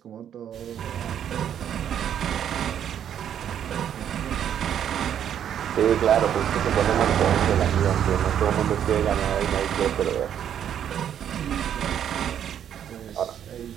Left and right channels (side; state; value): left; quieter; 9.5 dB